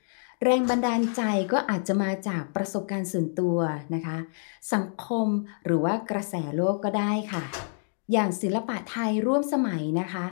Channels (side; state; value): right; silent; digital silence